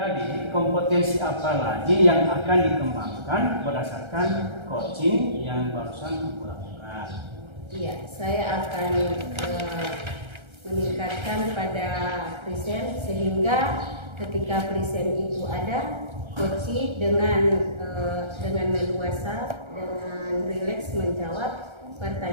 Jadi kompetensi apa lagi yang akan dikembangkan berdasarkan coaching yang barusan Ibu lakukan? Iya, saya akan meningkatkan pada present sehingga ketika present itu ada, coaching dengan leluasa, dengan rileks menjawab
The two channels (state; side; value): late; left; 1.3 ms